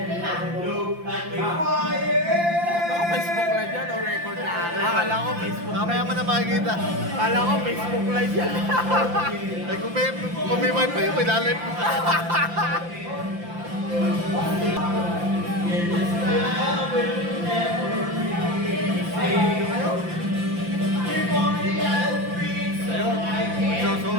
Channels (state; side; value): late; left; 5.8 ms